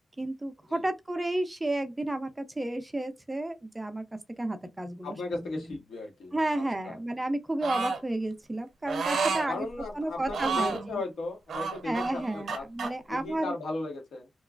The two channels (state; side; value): normal; both; correlation 0.91